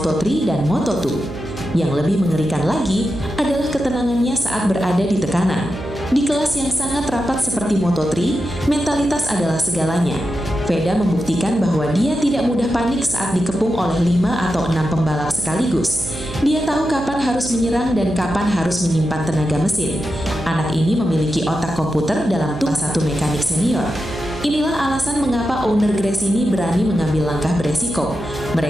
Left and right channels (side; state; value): right; noise; hum, 11 dB below the sound